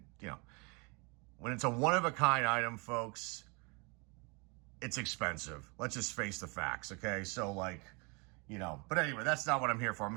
when it's a one-of-a-kind item, folks, it's expensive. Let's just face the facts, okay? So but anyway, that's not what I'm here for. I'm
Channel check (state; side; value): quieter; left; 30.8 dB